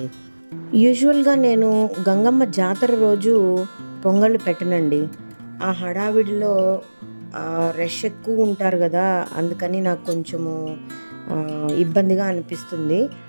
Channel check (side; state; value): both; inverted; correlation -1.00